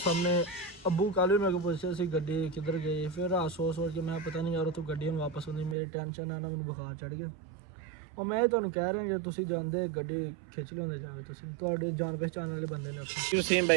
ਸਾਹਮਣੇ ਅੱਬੂ ਕੱਲ੍ਹ ਵੀ ਮੇਰੇ ਕੋਲ ਪੁੱਛਿਆ ਸੀ ਗੱਡੀ ਕਿੱਧਰ ਗਈ। ਫਿਰ ਰਾਤ ਸੋਚ ਕੇ ਮੈਂ ਪਤਾ ਨਹੀਂ ਯਾਰ ਉੱਥੋਂ ਗੱਡੀ ਹੁਣ ਵਾਪਸ ਆਉਂਦੀ, ਮੇਰੀ ਟੈਨਸ਼ਨ ਆ ਨਾ, ਮੈਨੂੰ ਬੁਖਾਰ ਚੜ੍ਹ ਗਿਆ। ਉਹ ਮੈਂ ਤੁਹਾਨੂੰ ਕਹਿ ਰਿਹਾ ਜੇ ਤੁਸੀਂ ਜਾਂਦੇ ਗੱਡੀ ਖਿੱਚ ਲਿਆਉਂਦੇ ਜਾਵੇ, ਤੁਸੀਂ ਤੁਹਾਡੇ ਜਾਣ ਪਹਿਚਾਣ ਵਾਲੇ ਬੰਦੇ ਨੇ ਉੱਥੇ। ਵਸੀਮ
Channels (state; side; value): drops out; left; at 5.8 s